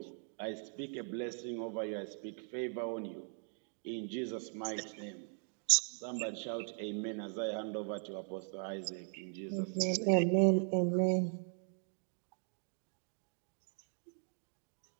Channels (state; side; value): silent; left; 52 dB below the other